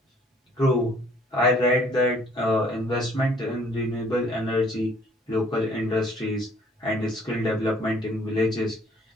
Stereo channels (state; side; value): normal; both; correlation 0.59